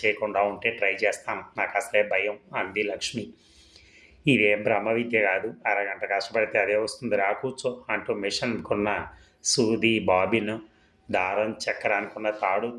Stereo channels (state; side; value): identical; both; correlation 1.00